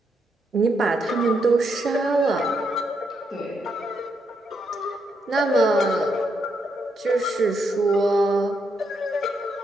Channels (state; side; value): normal; both; correlation 0.79